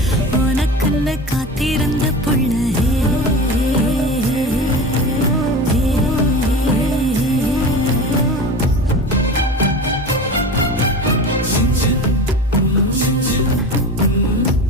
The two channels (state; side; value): normal; both; correlation 0.30